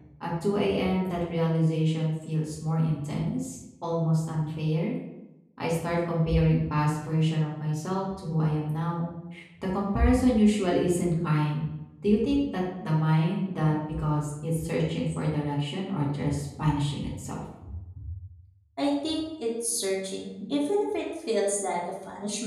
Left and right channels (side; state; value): both; identical; correlation 1.00